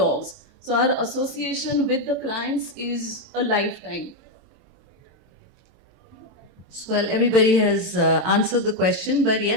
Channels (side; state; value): left; late; 22 ms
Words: So our association with the clients is a lifetime. So, well, everybody has answered the question, but